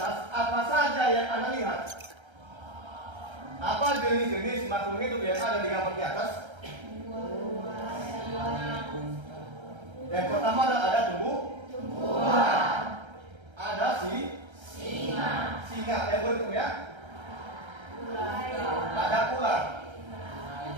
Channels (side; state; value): left; late; 1.3 ms